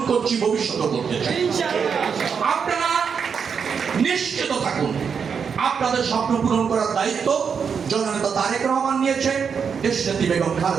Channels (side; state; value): left; quieter; 6.5 dB